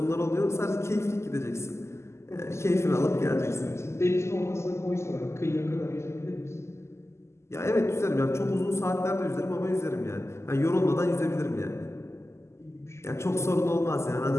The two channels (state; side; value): late; right; 0.13 ms